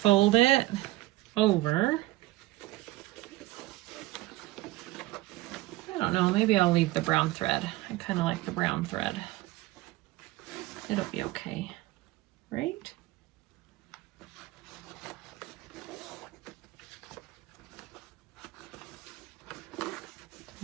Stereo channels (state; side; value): quieter; left; 18.4 dB